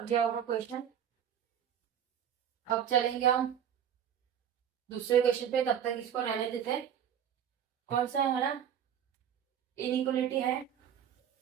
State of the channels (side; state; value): left; quieter; 9.1 dB